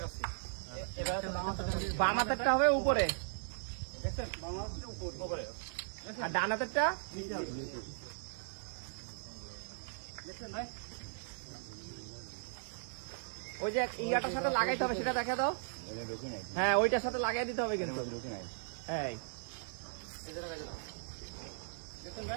এবার বাম হাতেরটা হবে উপরে, দেখছেন বাম হাতটা উপরে আর ডান হাতেরটা নিচে হবে। দেখছেন ভাই ওই যে ইয়াটার সাথে লাগাইতে হবে, সেটা দেখা দাও। হ্যাঁ, ওইটার সাথে লাগাই দিতে হবে কিন্তু। এই এই যে লাগাই দাও। দেখছেন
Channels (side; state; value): left; silent; digital silence